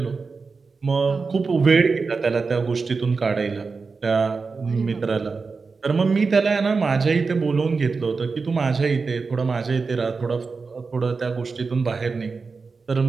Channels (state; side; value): quieter; left; 4.6 dB